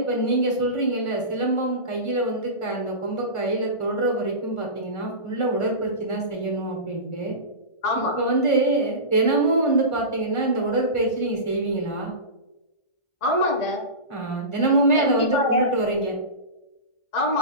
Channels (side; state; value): right; late; 1.4 ms